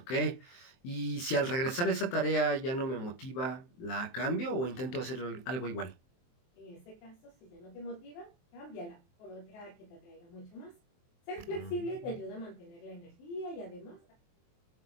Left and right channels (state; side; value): late; right; 23 ms